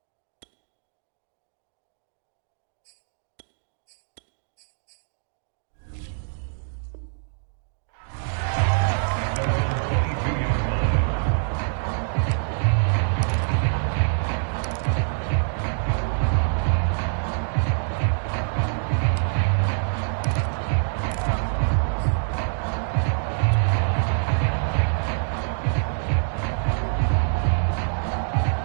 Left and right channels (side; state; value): left; silent; digital silence